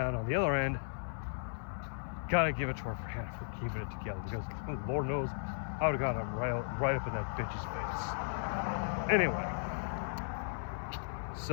on the other end, gotta give it to her for keeping it together because Lord knows I would have got him right up in that bitch's face. Anyway,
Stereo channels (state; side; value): silent; right; 54 dB below the other